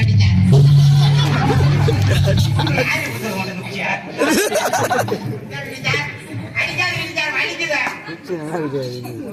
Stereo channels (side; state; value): both; identical; correlation 1.00